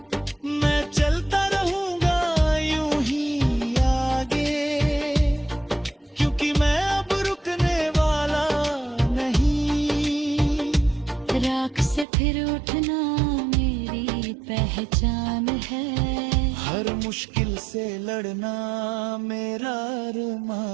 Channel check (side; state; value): left; drops out; at 12.1 s